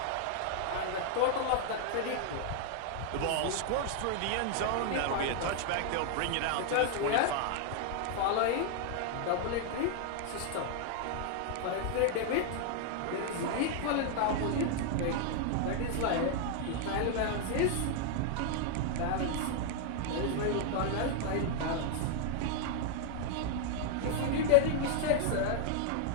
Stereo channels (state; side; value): different; both; correlation 0.00